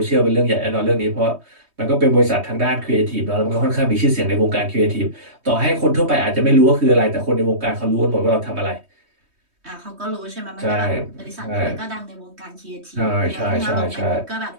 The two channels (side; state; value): left; late; 3.2 ms